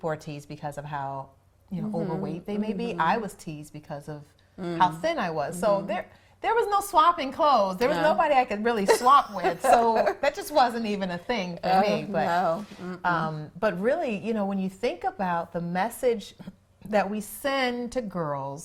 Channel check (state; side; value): identical; both; correlation 1.00